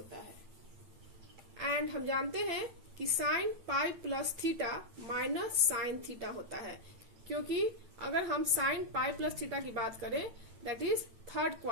है. एंड हम जानते हैं कि sign pi plus theta minus sine theta होता है क्योंकि अगर हम साइन पाई प्लस थीटा की बात करें that is third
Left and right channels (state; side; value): late; left; 9.0 ms